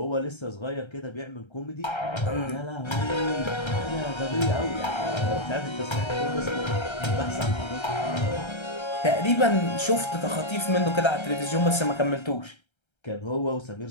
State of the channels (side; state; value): right; late; 1.3 ms